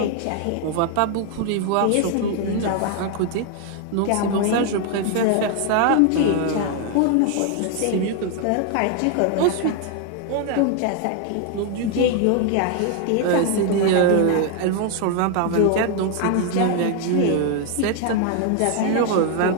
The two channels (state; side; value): different; both; correlation 0.00